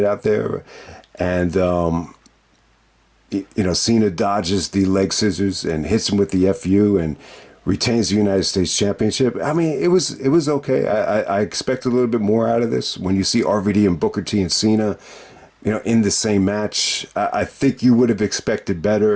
out there, and Cena dodges the leg scissors and hits him with the FU and retains the United States Championship. I mean, it was okay. I expect a little bit more out of this. When you see RVD and Booker T and Cena, in the same match, I think you would have expected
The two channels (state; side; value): identical; both; correlation 1.00